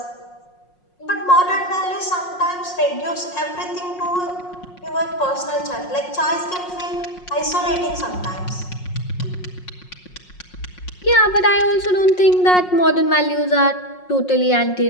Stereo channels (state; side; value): late; right; 5.5 ms